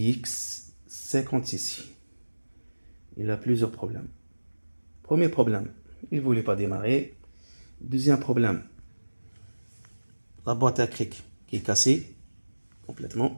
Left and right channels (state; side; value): inverted; both; correlation -1.00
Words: 56. Il a plusieurs problèmes. Premier problème, il ne voulait pas démarrer. Deuxième problème, la boîte à cric qui est cassée